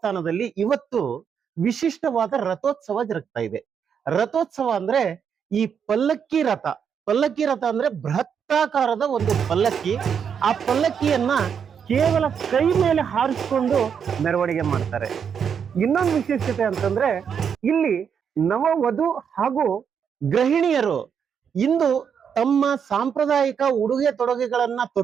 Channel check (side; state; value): left; quieter; 7.3 dB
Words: ಇವತ್ತು ವಿಶಿಷ್ಟವಾದ ರಥೋತ್ಸವ ಜರುಗ್ತಾ ಇದೆ. ರಥೋತ್ಸವ ಅಂದ್ರೆ ಈ ಪಲ್ಲಕ್ಕಿ ರಥ. ಪಲ್ಲಕ್ಕಿ ರಥ ಅಂದ್ರೆ ಬೃಹತ್ತಾಕಾರದ ಒಂದು ಪಲ್ಲಕ್ಕಿ. ಆ ಪಲ್ಲಕ್ಕಿಯನ್ನ ಕೇವಲ ಕೈ ಮೇಲೆ ಹಾರಿಸಿಕೊಂಡು ಮೆರವಣಿಗೆ ಮಾಡ್ತಾರೆ. ಇನ್ನೊಂದು ವಿಶೇಷತೆ ಅಂತಂದ್ರೆ ಇಲ್ಲಿ ನವವಧು ಹಾಗೂ ಗೃಹಿಣಿಯರು ಇಂದು ತಮ್ಮ ಸಾಂಪ್ರದಾಯಿಕ ಉಡುಗೆ ತೊಡುಗೆಗಳನ್ನ